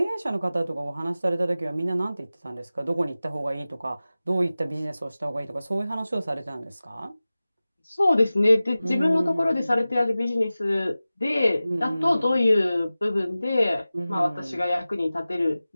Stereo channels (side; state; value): both; inverted; correlation -0.96